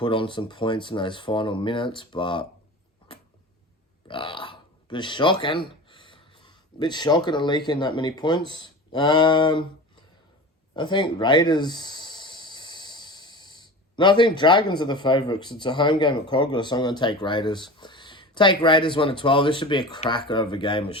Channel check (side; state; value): both; normal; correlation 0.33